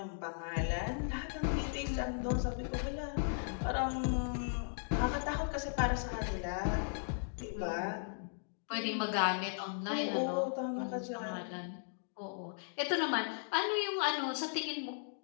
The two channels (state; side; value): silent; right; digital silence